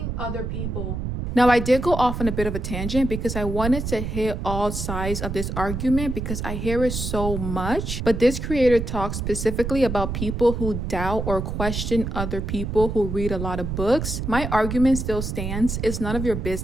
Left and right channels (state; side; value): noise; right; rumble, 4 dB below the sound